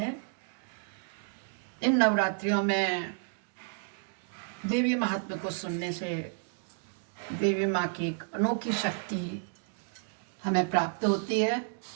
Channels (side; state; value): left; quieter; 39.6 dB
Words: इन नवरात्रियों में देवी महात्म्य को सुनने से देवी माँ की एक अनोखी शक्ति हमें प्राप्त होती है,